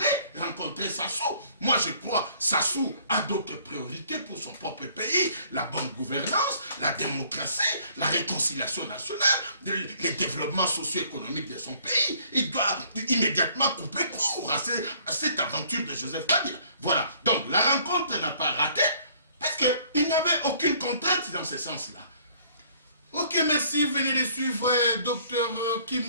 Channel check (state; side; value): inverted; both; correlation -0.59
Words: rencontrer Sassou. Moi je crois Sassou a d'autres priorités pour son propre pays, la bonne gouvernance, la démocratie, la réconciliation nationale, le développement socio-économique de son pays. Il doit immédiatement couper court à cette aventure de Joseph Kabila. Voilà, donc la rencontre n'a pas raté parce qu'il n'y avait aucune contrainte dans ce sens-là. Ok, merci. Venez de suivre Dr